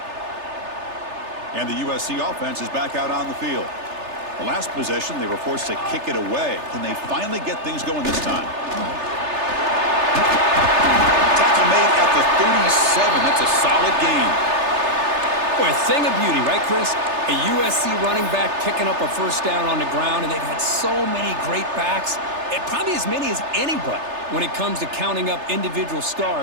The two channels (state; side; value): late; left; 3.3 ms